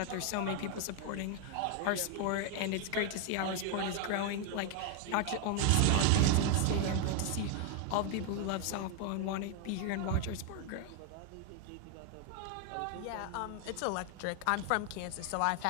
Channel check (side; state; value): both; different; correlation 0.00